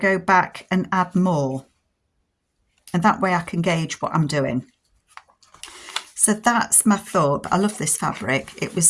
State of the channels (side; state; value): both; identical; correlation 1.00